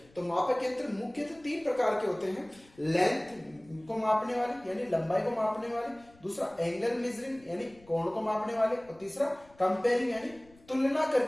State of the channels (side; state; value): left; noise; rumble, 27 dB below the sound